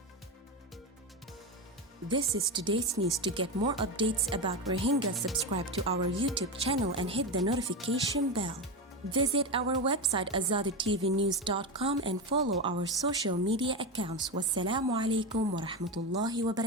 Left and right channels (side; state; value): both; normal; correlation 0.16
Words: This is today's news. To get more updates about Rohingya, subscribe to our YouTube channel and hit the notification bell. Visit our website azaditvnews.com and follow our social media accounts. Wassalamu alaikum wa rahmatullahi wa